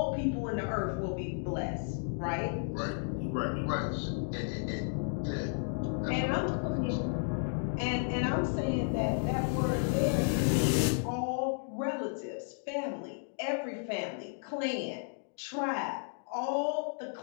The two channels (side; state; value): right; silent; digital silence